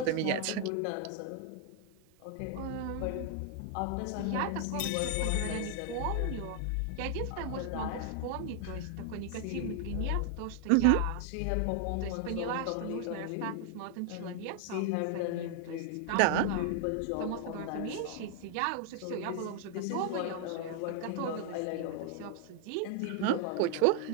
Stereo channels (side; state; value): both; different; correlation 0.00